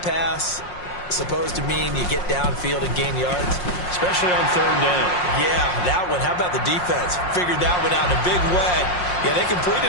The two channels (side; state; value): right; late; 5.6 ms